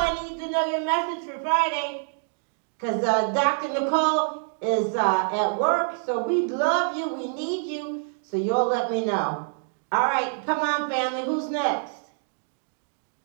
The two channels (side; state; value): left; silent; digital silence